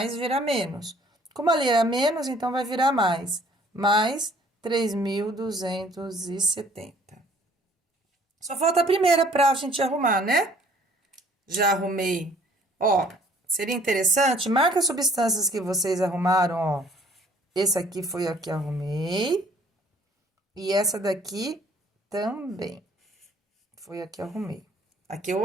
vira menos. Como ali era menos, então vai virar mais. Mais 3.270. Só falta a primeira pra gente arrumar, né? Já arrumei. Ó, seria interessante, marca as substâncias que vocês arrumaram, ó. Esse aqui foi a que arrumei. E essa daqui também. Foi a que arrumei. Aqui eu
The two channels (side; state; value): both; normal; correlation 0.57